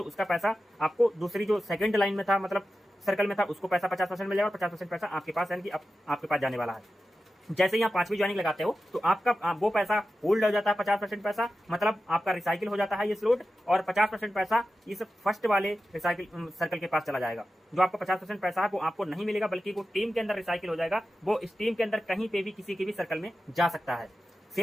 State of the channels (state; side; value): normal; both; correlation 0.92